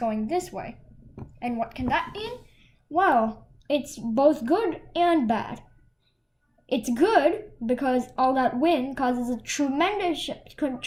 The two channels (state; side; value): identical; both; correlation 1.00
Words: this way. And what can that mean? Well, it's both good and bad. It's good because all that wind causes a tremendous